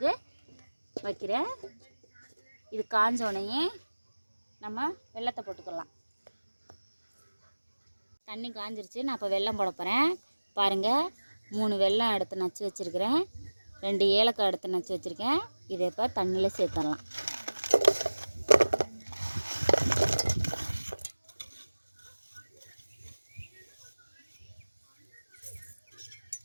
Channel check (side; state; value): both; inverted; correlation -1.00